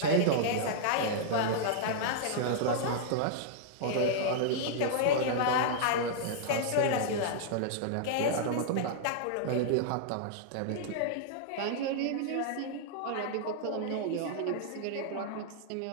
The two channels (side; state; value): both; different; correlation -0.01